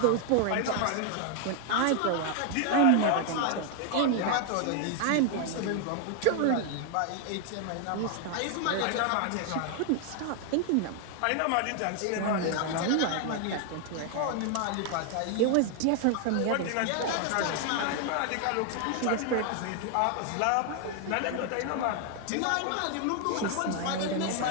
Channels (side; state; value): both; different; correlation 0.00